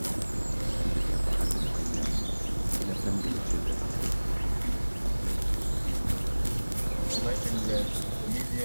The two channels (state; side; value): inverted; both; correlation -1.00